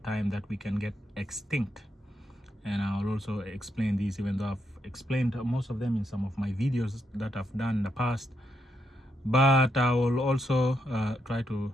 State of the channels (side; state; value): both; normal; correlation 0.81